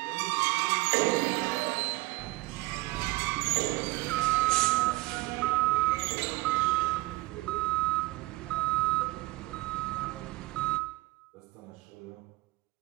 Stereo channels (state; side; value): quieter; left; 20.3 dB